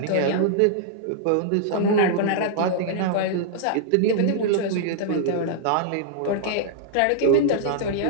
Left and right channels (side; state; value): both; different; correlation -0.01